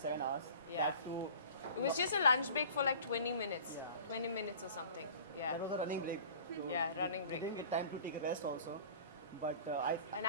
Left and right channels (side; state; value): both; inverted; correlation -0.44